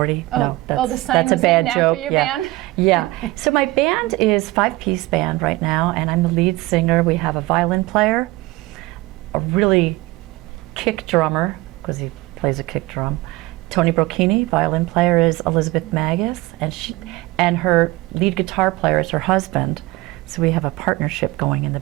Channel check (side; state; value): left; quieter; 20.0 dB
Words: The sign was named after your band? Yeah. So my band is 5-piece band right now, and I'm the lead singer. We have a violin player, a really kick drummer, because he plays a kick drum. Tony Brocchini, violin player, is Elizabeth Magus, and her lead guitar player is her husband. So we have a partnership going in the